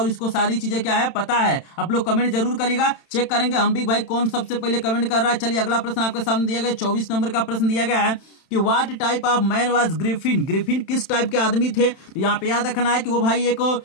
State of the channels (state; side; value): late; right; 31 ms